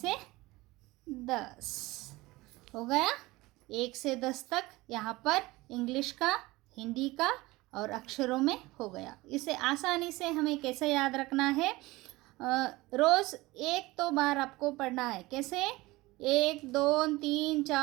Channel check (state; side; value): quieter; left; 20.4 dB